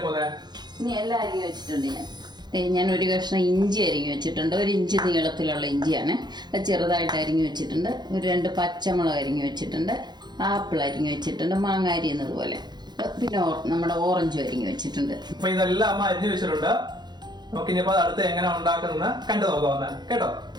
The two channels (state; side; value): late; left; 0.21 ms